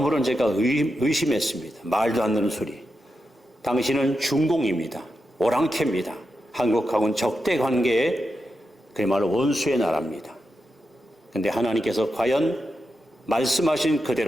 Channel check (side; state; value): both; normal; correlation 0.88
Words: 제가 의심했습니다. 말도 안 되는 소리. 당신은 중공입니다. 오랑캐입니다. 한국하고는 적대 관계의 그야말로 원수의 나라입니다. 그런데 하나님께서 과연 말씀하신